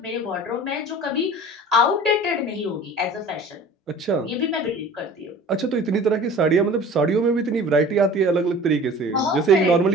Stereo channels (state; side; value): normal; both; correlation 0.43